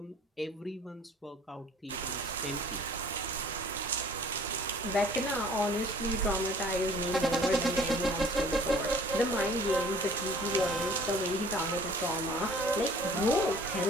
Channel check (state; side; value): normal; both; correlation 0.51